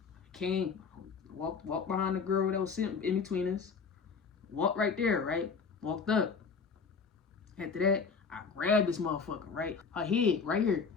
Came, walked behind the girl that was sitting in between us. Walked right there, right? Walked up. After that, I grabbed this motherfucker, right? Her head, right here.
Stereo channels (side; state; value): right; quieter; 5.5 dB